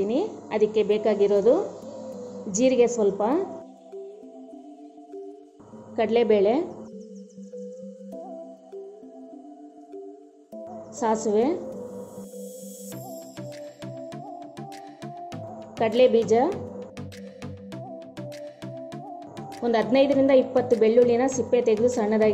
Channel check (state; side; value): identical; both; correlation 1.00